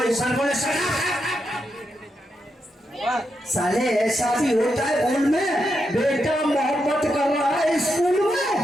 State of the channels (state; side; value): normal; both; correlation 0.84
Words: सर बोले साले ऐसा भी होता है भूल में, बेटा मोहब्बत कर रहा है स्कूल